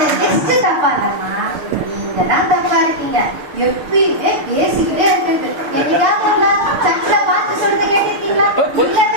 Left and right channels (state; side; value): late; left; 6.6 ms